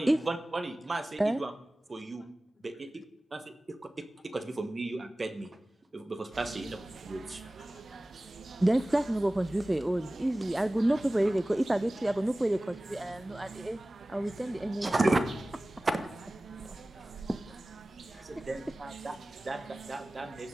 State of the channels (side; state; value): both; normal; correlation 0.98